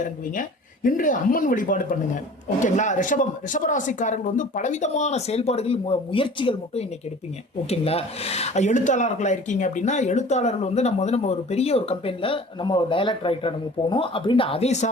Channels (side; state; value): both; normal; correlation 0.44